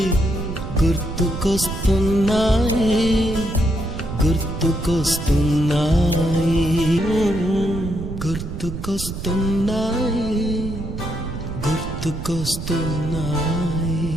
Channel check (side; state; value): right; noise; rumble, 7 dB below the sound